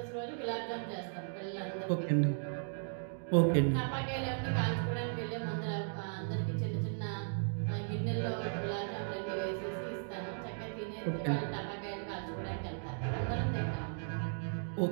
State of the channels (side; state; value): left; silent; digital silence